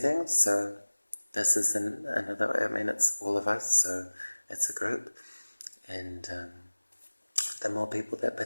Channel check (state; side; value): inverted; both; correlation -1.00